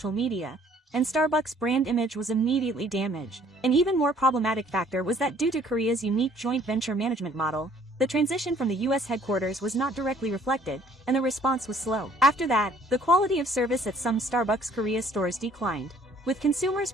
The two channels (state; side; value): normal; both; correlation 0.59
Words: media, and Starbucks' brand image was immediately damaged. An even more problematic factor was that due to Korea's unique joint venture management model, the transition from the US headquarters was not directly reflected, and the response was slow. After that, the quality of service at some Starbucks Korea stores declined, with consumers